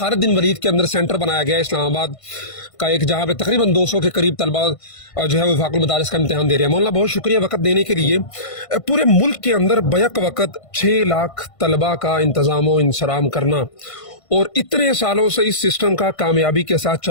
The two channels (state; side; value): late; right; 1.5 ms